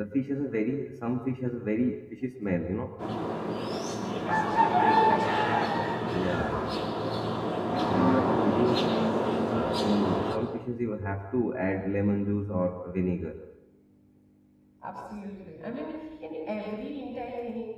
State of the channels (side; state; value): both; identical; correlation 1.00